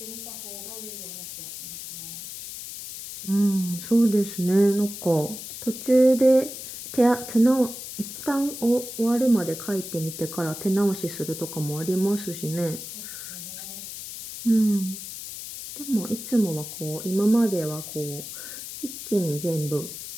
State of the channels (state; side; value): noise; left; hiss, 10 dB below the sound